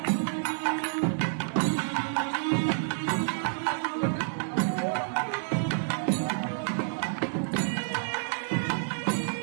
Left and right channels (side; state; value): left; silent; digital silence